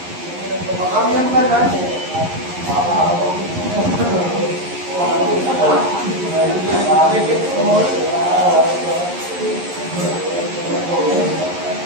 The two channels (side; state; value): left; late; 11 ms